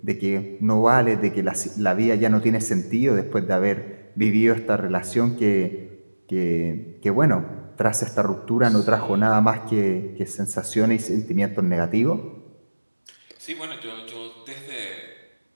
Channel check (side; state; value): both; inverted; correlation -1.00